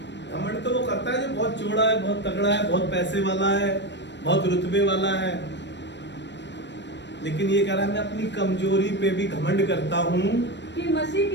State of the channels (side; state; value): right; late; 0.52 ms